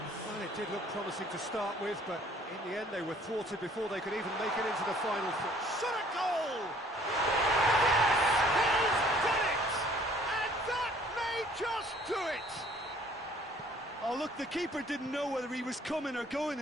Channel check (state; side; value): normal; both; correlation 0.57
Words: Well, it did look promising to start with, but in the end they were thwarted before they could even make it into the final. Shot a goal! Yes! He's done it! And that may just do it! Oh, look, the keeper didn't know whether he was coming or going